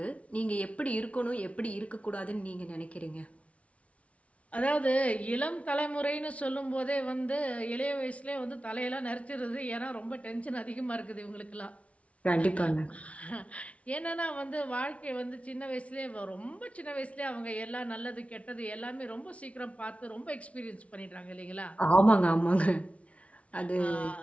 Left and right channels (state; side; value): late; right; 0.064 ms